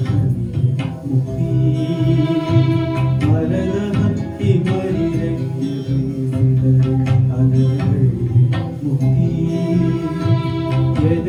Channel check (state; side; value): identical; both; correlation 1.00